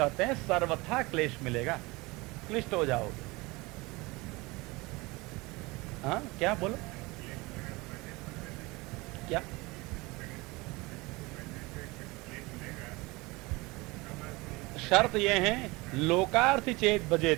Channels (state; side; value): quieter; left; 23.5 dB